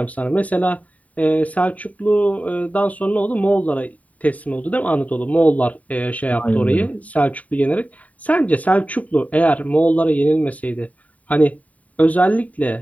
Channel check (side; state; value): right; late; 0.070 ms